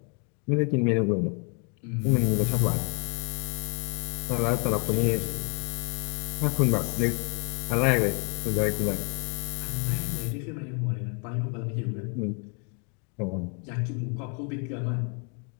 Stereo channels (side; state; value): right; quieter; 37.1 dB